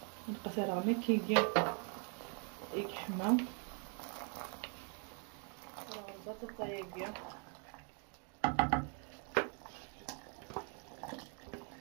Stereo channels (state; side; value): quieter; left; 39.5 dB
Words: نبقى ثرى ما كيجي يحمى البطاطا ياقيا